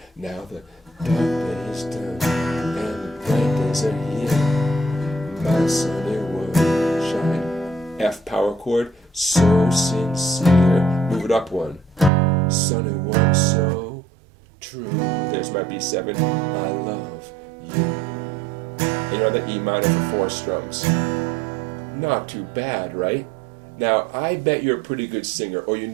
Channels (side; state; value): left; drops out; at 12.1 s